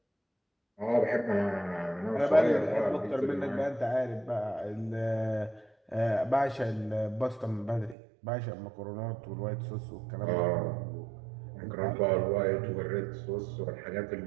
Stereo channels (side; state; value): left; drops out; at 8.0 s